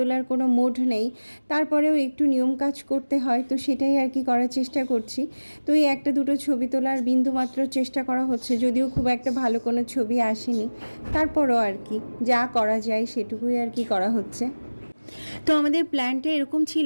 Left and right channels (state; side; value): inverted; both; correlation -1.00